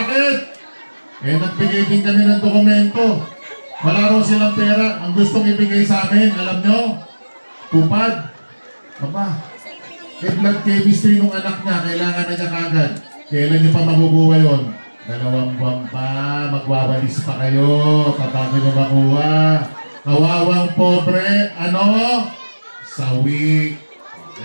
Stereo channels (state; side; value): inverted; both; correlation -1.00